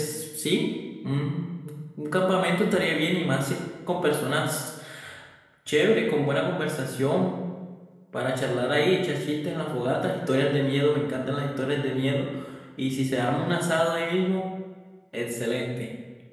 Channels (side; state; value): both; identical; correlation 1.00